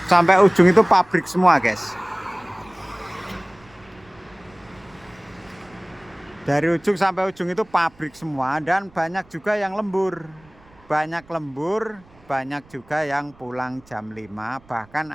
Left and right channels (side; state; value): right; noise; rumble, 28 dB below the sound